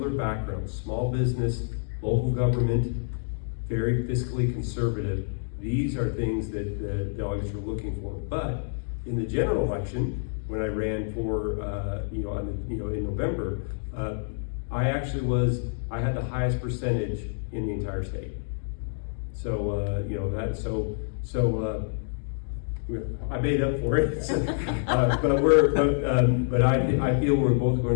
backgrounds: small business, local government, very fiscally conservative. These are things that the delegates are looking for. But in the general election, when I ran for, in November, I had the highest percentage in the entire state. So, I made up for it. But I feel we're both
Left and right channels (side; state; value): right; silent; digital silence